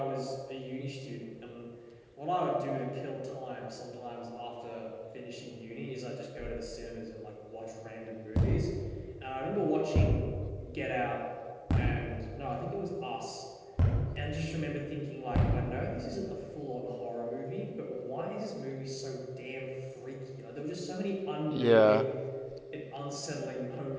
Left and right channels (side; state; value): both; identical; correlation 1.00